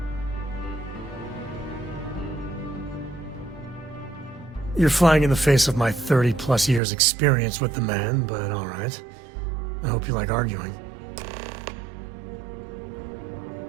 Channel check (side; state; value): left; drops out; at 6.8 s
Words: You're flying in the face of my 30-plus years experience with the man, but all right. I hope you like arguing.